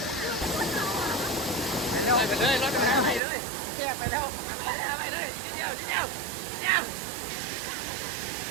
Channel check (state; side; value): drops out; left; at 3.2 s